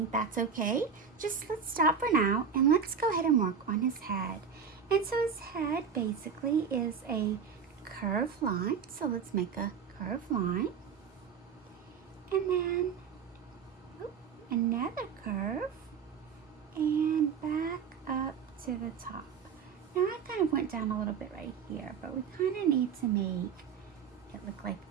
that's okay. Just let's stop for now and let's go ahead and work on his head. And so his head basically is a curved line. So let's make a curved line. And then another curve and back up to the top. Now I kind of went down a little bit right here, but we kind of need to make it look like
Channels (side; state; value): left; quieter; 6.6 dB